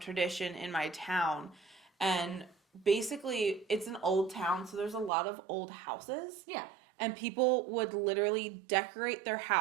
in my town. And basically, it's an old town, so there's a lot of old houses. Yeah. And people would literally decorate their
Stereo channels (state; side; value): drops out; left; at 5.1 s